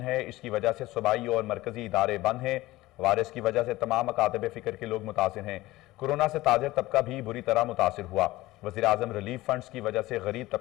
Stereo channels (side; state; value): right; quieter; 18.1 dB